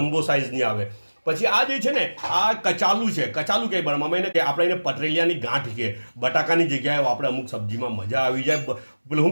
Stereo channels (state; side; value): inverted; both; correlation -1.00